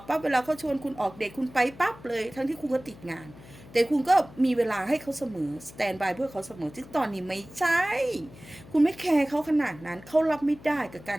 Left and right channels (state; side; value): noise; left; hum, 20 dB below the sound